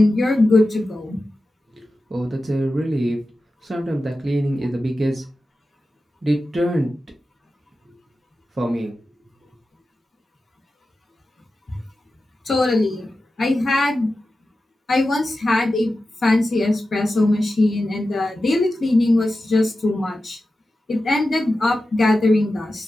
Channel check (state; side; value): normal; both; correlation 0.93